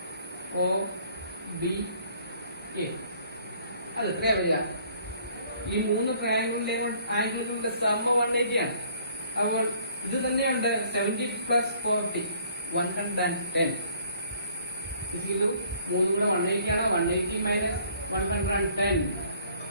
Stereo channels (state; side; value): inverted; both; correlation -0.59